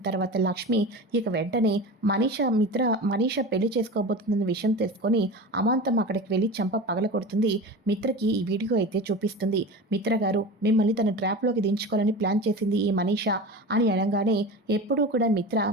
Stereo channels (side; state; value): both; normal; correlation 0.30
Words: తర్వాత లక్ష్మి ఇక వెంటనే మనీషా పెళ్లి చేసుకోబోతుందన్న విషయం తెలుసుకొని అమాంతం అక్కడికి వెళ్ళి చంప పగల కొడుతుంది. మిత్రకి ఈ వీడియో అయితే చూపిస్తుంది. మిత్ర గారు, మిమ్మల్ని తన ట్రాప్లోకి దించుకోవాలని ప్లాన్ చేసింది ఈ మనీషా అని అనగానే, ఎప్పుడూ కూడా మిత్ర